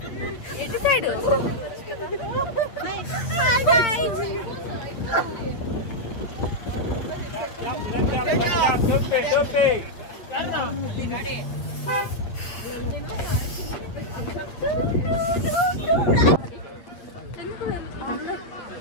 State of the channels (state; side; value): late; right; 8.4 ms